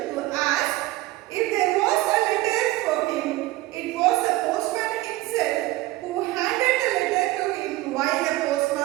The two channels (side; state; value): left; quieter; 18.5 dB